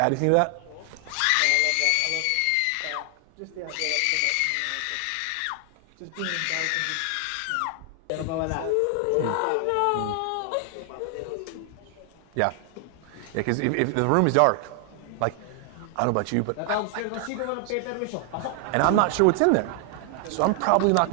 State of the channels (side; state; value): both; different; correlation 0.00